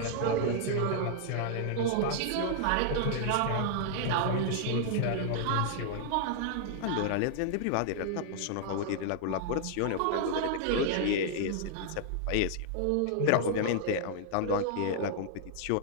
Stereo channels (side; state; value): both; different; correlation -0.01